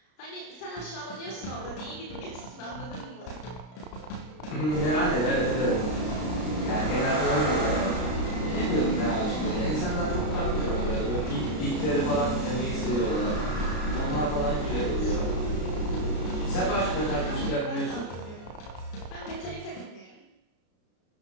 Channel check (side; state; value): right; late; 33 ms